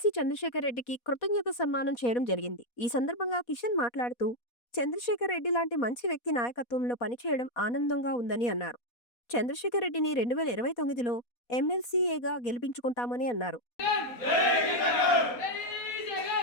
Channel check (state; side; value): late; right; 4.2 ms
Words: చంద్రశేఖర్ రెడ్డికి కృతజ్ఞత సన్మానం చేయడం జరిగింది. ఈ సందర్భంగా కిషన్ మాట్లాడుతూ చంద్రశేఖర్ రెడ్డి లాంటి మంచి వ్యక్తి నాయకత్వంలో పనిచేయడం ఆనందంగా ఉందని అన్నారు. చంద్రశేఖర్ రెడ్డిని 2029లో ఎమ్మెల్సీఏగా గెలిపించుకుంటామని అన్నారు.